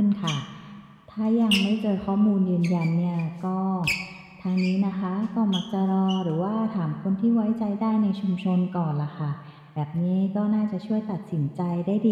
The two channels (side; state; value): both; identical; correlation 1.00